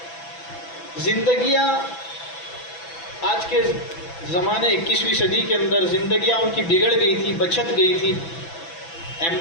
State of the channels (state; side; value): late; right; 6.0 ms